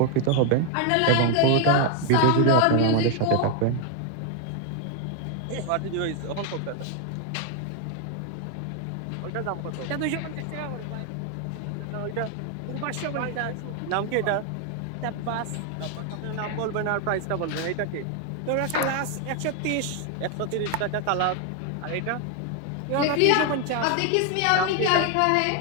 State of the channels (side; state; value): both; different; correlation 0.01